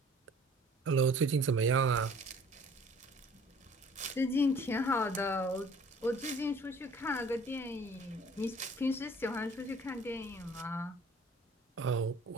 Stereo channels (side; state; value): both; normal; correlation 0.52